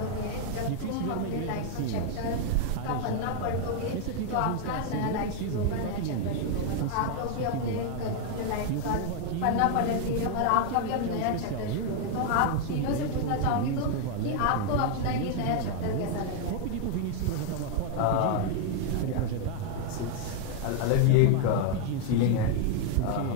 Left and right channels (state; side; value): different; both; correlation 0.00